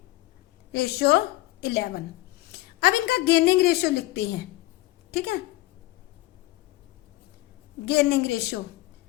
अब इनका गेनिंग रेशो लिखते हैं। ठीक है, गेनिंग रेशो,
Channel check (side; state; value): right; quieter; 18.3 dB